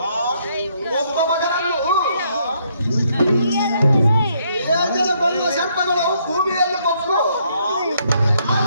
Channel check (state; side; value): inverted; both; correlation -0.71